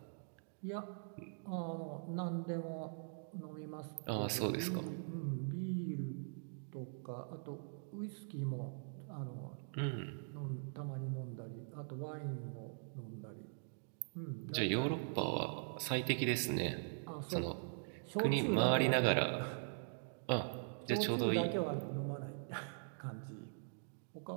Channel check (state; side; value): silent; left; digital silence